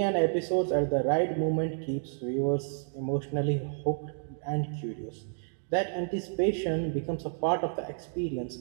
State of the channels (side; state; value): left; silent; digital silence